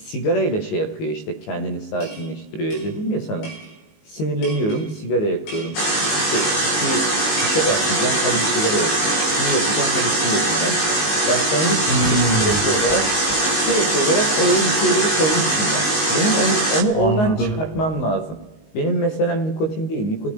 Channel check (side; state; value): right; late; 19 ms